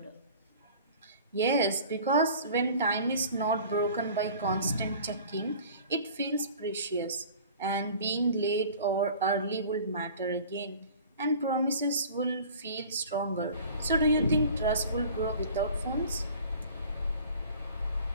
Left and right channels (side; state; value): both; inverted; correlation -0.45